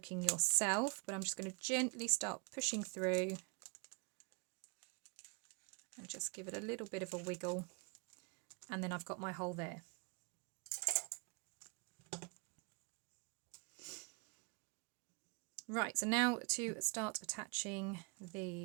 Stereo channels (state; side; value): quieter; left; 32.8 dB